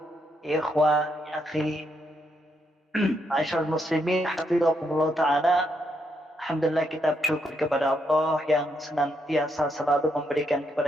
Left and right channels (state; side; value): normal; both; correlation 0.78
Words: ya ikhwan ya akhi. Ma'asyiral muslimin, hafizakumullahu ta'ala. Alhamdulillah, kita bersyukur kepada Allah yang senantiasa selalu memberikan